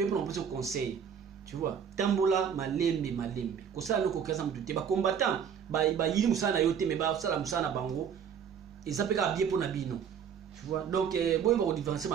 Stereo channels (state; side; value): quieter; left; 7.7 dB